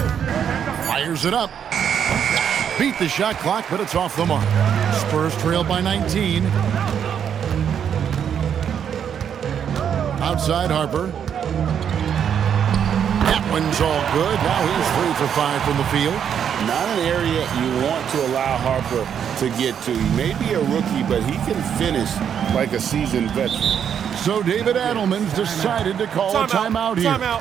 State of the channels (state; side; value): quieter; left; 8.3 dB